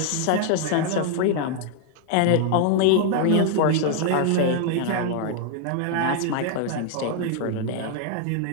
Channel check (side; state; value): both; different; correlation 0.00